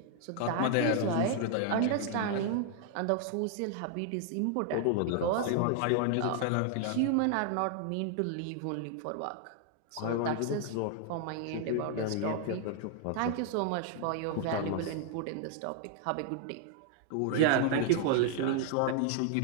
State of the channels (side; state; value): both; different; correlation 0.00